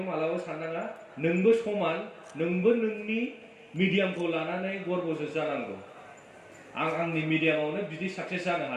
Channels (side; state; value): both; identical; correlation 1.00